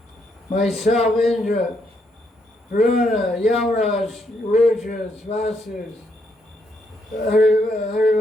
Myself, Indra, Varuna, Yamaraj, Rudras, Vasus,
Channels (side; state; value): both; normal; correlation 0.76